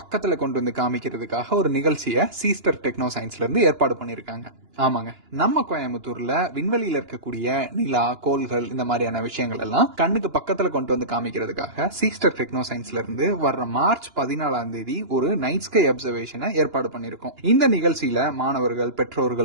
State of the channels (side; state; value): left; late; 2.9 ms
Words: கொண்டு வந்து காமிக்கிறதுக்காக ஒரு நிகழ்ச்சியை சீஸ்டர் டெக்னோ சயின்ஸ்ல இருந்து ஏற்பாடு பண்ணியிருக்காங்க. ஆமாங்க, நம்ம கோயம்புத்தூர்ல விண்வெளியில இருக்கக்கூடிய நிலா, கோள்கள் இந்த மாதிரியான விஷயங்கள் எல்லாம் கண்ணுக்கு பக்கத்துல கொண்டு வந்து காமிக்கிறதுக்காக சீஸ்டர் டெக்னோ சயின்ஸ்ல இருந்து வர்ற மார்ச் 14ஆம் தேதி ஒரு நைட் ஸ்கை அப்சர்வேஷனை ஏற்பாடு பண்ணியிருக்கோம். இந்த நிகழ்ச்சியில மாணவர்கள்,